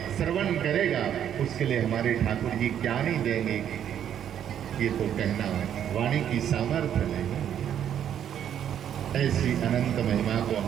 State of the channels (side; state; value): left; quieter; 9.6 dB